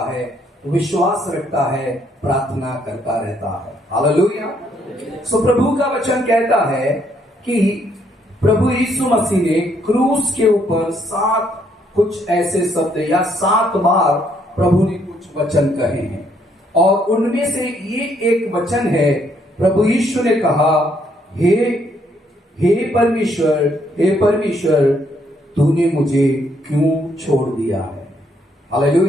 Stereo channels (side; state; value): both; normal; correlation 0.71